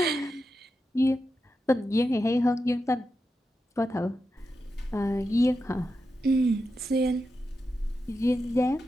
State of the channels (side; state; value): both; normal; correlation 0.88